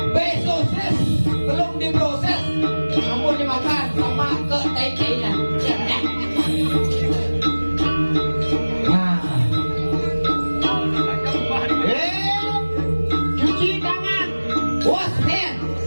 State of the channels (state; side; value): inverted; both; correlation -1.00